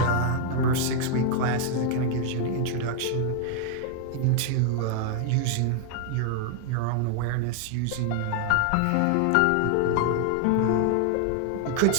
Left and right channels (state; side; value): different; both; correlation 0.00